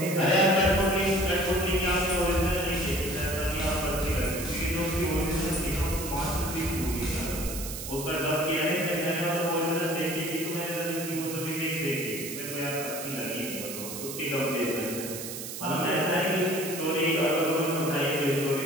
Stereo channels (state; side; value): noise; right; hiss, 8 dB below the sound